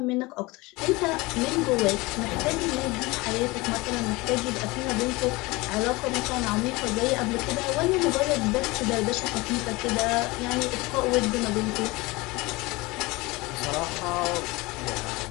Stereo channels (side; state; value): right; quieter; 22.8 dB